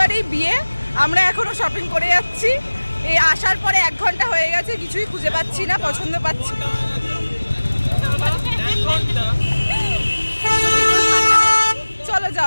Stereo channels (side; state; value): both; inverted; correlation -1.00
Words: বিয়ে। আমরা এখনো শপিং করে যাচ্ছি। এই আসার পরে 1 ঘন্টা হয়ে গেছে, কিছুই খুঁজে পাচ্ছি না, পছন্দ পাচ্ছি না। চলো